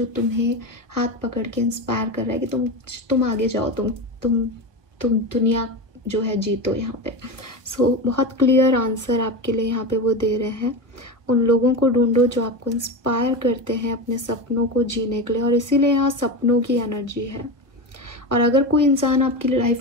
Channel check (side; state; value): left; late; 1.1 ms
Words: तुम्हें हाथ पकड़ के इंस्पायर कर रहा है कि तुम आगे जाओ, तुम दुनिया जो है जीतो यहाँ पे. सो बहुत क्लियर आंसर आपके लिए यहाँ पे वो दे रहे हैं. उन लोगों को ढूंढो जो आपको इंस्पायर करते हैं अपने सपनों को जीने के लिए, और इसीलिए यहाँ सपनों की एनर्जी है. और अगर कोई इंसान आपकी